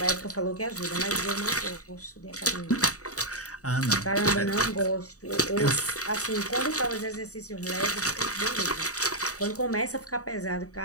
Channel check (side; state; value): right; late; 0.66 ms